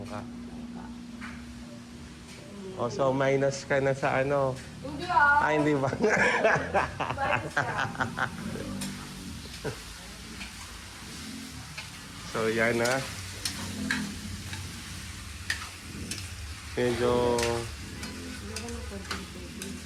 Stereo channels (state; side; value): identical; both; correlation 1.00